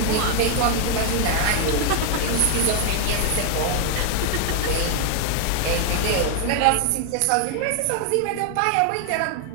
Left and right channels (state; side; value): different; both; correlation 0.00